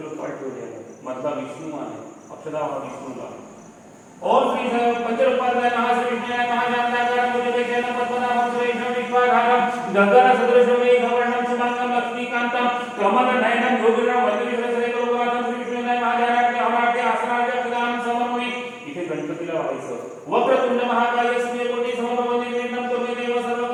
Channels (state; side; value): identical; both; correlation 1.00